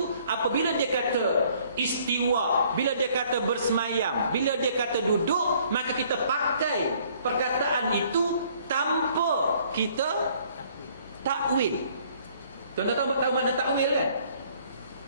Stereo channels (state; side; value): inverted; both; correlation -0.60